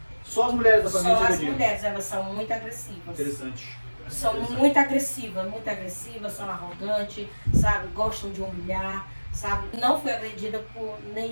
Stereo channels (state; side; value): inverted; both; correlation -1.00